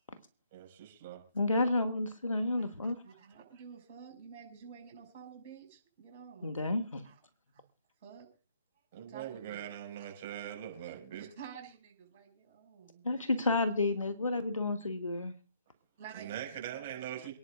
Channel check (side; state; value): both; inverted; correlation -0.69